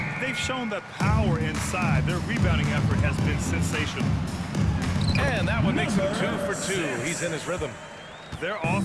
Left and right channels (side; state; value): both; identical; correlation 1.00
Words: they've shown the power inside. Their rebounding effort has been sensational. And that one makes him 2 for 2. He's in his rhythm. Their